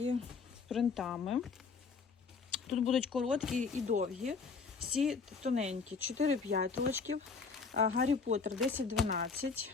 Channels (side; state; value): right; quieter; 5.0 dB